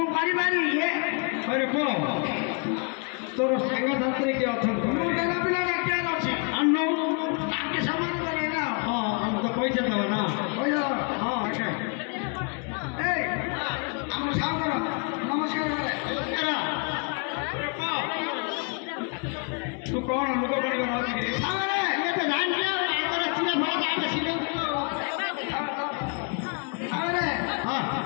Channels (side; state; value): right; quieter; 35.8 dB